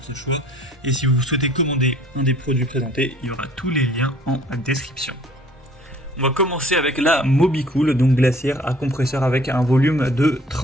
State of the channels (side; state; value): both; normal; correlation 0.54